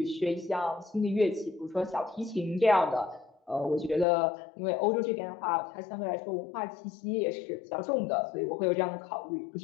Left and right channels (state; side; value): drops out; right; at 4.0 s